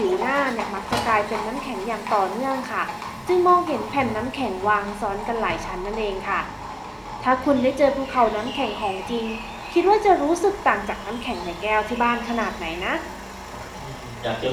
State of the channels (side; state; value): both; identical; correlation 1.00